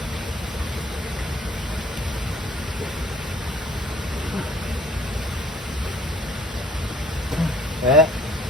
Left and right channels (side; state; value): both; normal; correlation 0.57